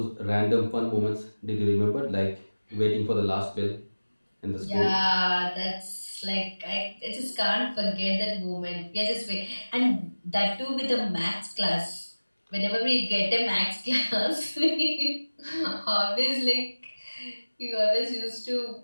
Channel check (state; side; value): inverted; both; correlation -1.00